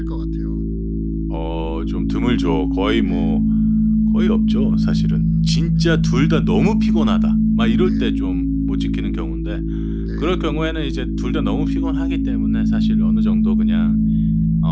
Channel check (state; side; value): identical; both; correlation 1.00